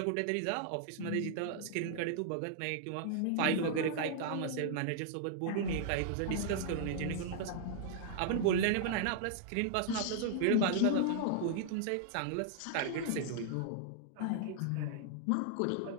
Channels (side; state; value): both; different; correlation -0.01